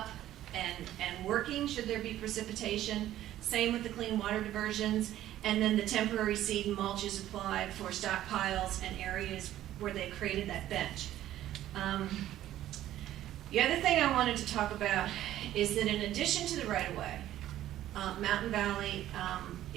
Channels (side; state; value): left; quieter; 13.1 dB